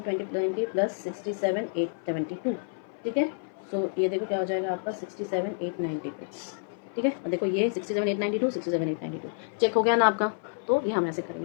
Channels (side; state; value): right; silent; 56 dB below the other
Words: 20 प्लस 67 872, ठीक है, सो ये देखो क्या हो जाएगा आपका 67 892, ठीक है। और देखो ये 67,892 67,892 चेक हो गया ना आपका। तो ये हम ऐसे